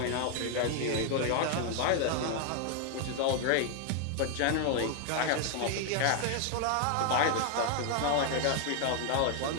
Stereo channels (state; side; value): different; both; correlation 0.00